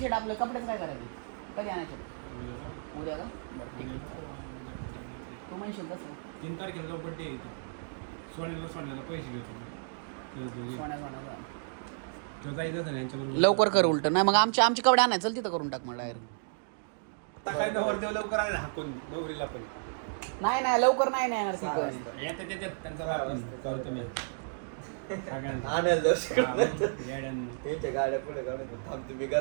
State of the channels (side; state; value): left; silent; digital silence